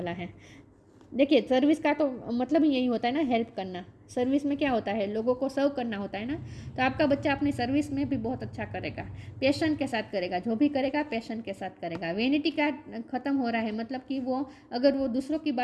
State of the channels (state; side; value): identical; both; correlation 1.00